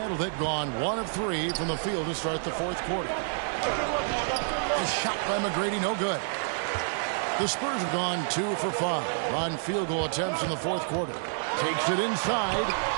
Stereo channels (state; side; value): silent; left; digital silence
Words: they've gone 1 of 3 from the field to start the fourth quarter. The shot by McGrady, no good. The Spurs have gone 2 for 5 on field goal attempts in the fourth quarter. Takes it inside.